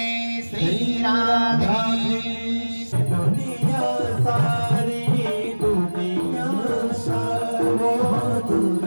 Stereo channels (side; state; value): both; inverted; correlation -1.00